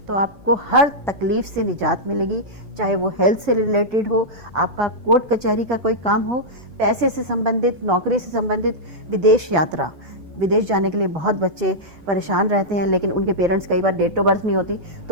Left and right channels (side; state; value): left; late; 6.7 ms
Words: आपको हर तकलीफ से निजात मिलेगी, चाहे वो हेल्थ से रिलेटेड हो, आपका कोर्ट कचहरी का कोई काम हो, पैसे से संबंधित, नौकरी से संबंधित, विदेश यात्रा, विदेश जाने के लिए बहुत बच्चे परेशान रहते हैं, लेकिन उनके पेरेंट्स कई बार डेट ऑफ बर्थ नहीं होती